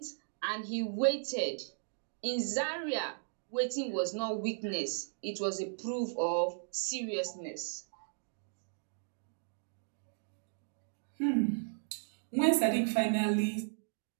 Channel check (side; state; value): left; silent; digital silence